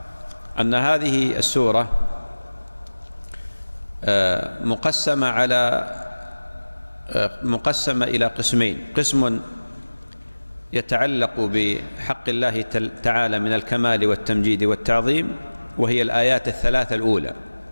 أن هذه السورة مقسمة إلى قسمين: قسم يتعلق بحق الله تعالى من الكمال والتمجيد والتعظيم وهي الآيات الثلاثة الأولى،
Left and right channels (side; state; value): both; inverted; correlation -1.00